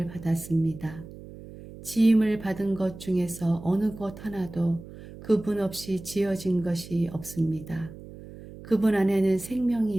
받았습니다. 지음을 받은 것 중에서 어느 것 하나도 그분 없이 지어진 것이 없습니다. 그분 안에는 생명이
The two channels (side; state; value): right; noise; hum, 16 dB below the sound